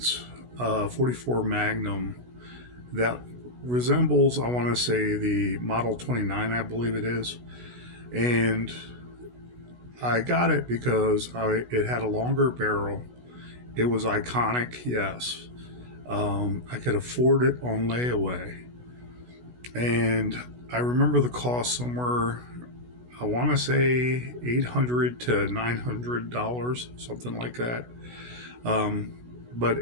44 Magnum that resembles, I want to say, the Model 29, I believe it is. And I got it because it had a longer barrel. It was iconic, yes. I could afford it on layaway. And I remember the cost somewhere, I want to say $800 to $900, something like that. But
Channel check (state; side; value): late; left; 16 ms